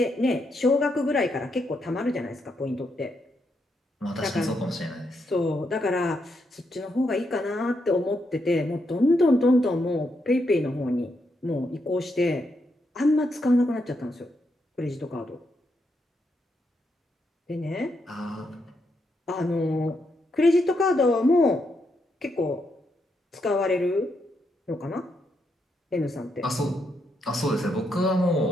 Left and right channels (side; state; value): both; normal; correlation 0.80